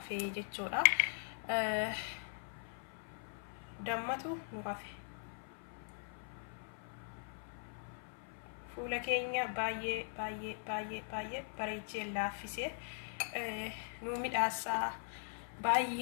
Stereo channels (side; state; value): right; silent; 51 dB below the other